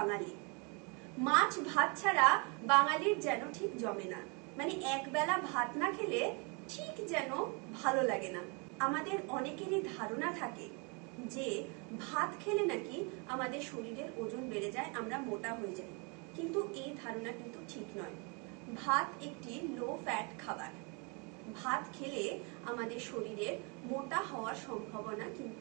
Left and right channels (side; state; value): left; quieter; 32.2 dB